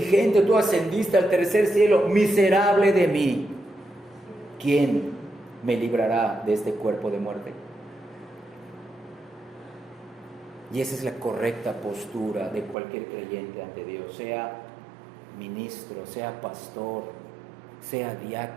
Tú ascendiste al tercer cielo. Miserable de mí. ¿Quién me librará de este cuerpo de muerte? Y esa es la correcta postura de cualquier creyente ante Dios, sea ministro, sea pastor, sea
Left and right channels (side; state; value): left; drops out; at 12.8 s